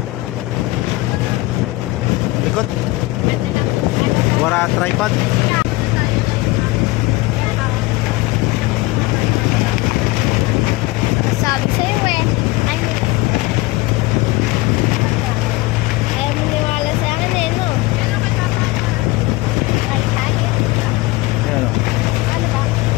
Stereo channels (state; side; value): quieter; right; 20.8 dB